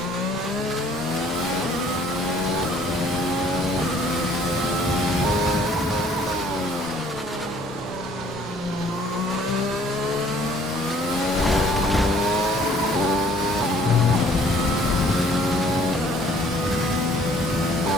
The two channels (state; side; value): normal; both; correlation 0.58